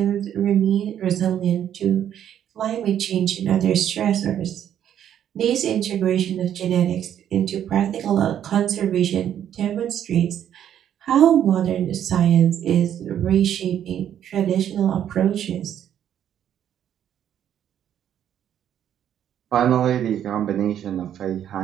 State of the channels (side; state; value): left; quieter; 10.1 dB